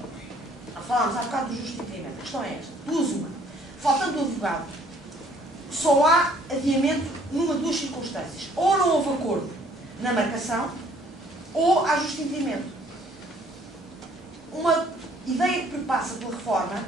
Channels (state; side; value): normal; both; correlation 0.60